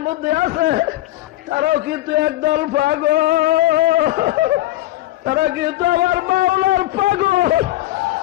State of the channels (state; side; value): quieter; right; 15.9 dB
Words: মধ্যে আছে তারাও কিন্তু একদল পাগল, তারা কিন্তু আমার মাওলার পাগল।